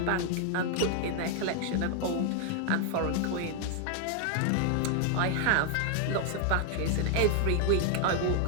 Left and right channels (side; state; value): both; different; correlation 0.00